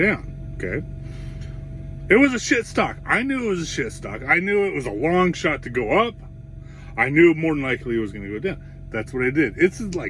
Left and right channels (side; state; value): both; identical; correlation 1.00